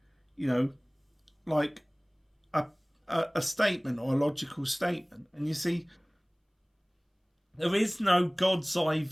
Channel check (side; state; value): both; identical; correlation 1.00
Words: like a statement or a logical statement. And you see, there is no God's eye